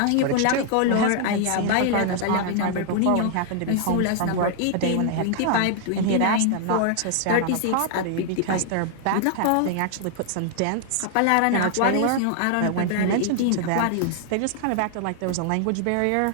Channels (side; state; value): both; different; correlation 0.00